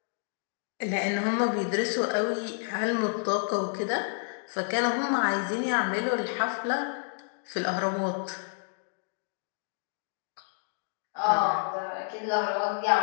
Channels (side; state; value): right; silent; 56 dB below the other